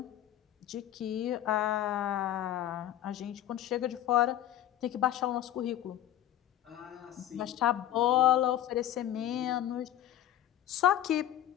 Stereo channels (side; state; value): right; quieter; 12.4 dB